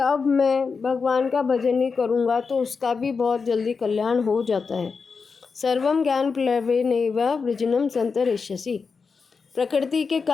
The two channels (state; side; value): quieter; right; 5.1 dB